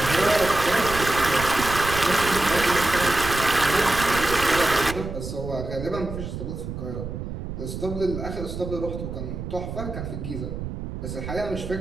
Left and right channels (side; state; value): right; noise; rumble, 7 dB below the sound